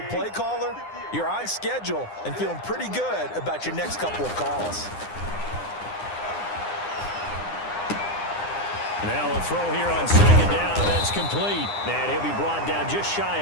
play caller, you're on schedule and feeling pretty good about your next couple of calls. Now a throw here on 2nd down, and that's complete. And he'll be brought down just shy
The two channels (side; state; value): right; late; 9.8 ms